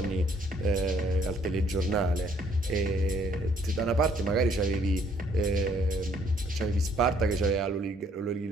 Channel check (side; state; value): both; normal; correlation 0.65